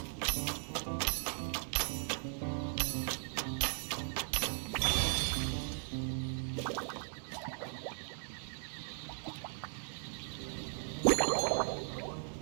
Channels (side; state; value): left; silent; 53 dB below the other